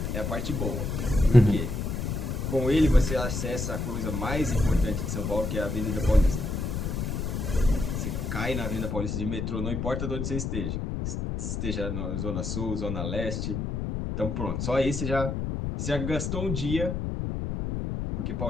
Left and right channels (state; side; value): noise; left; rumble, 2 dB below the sound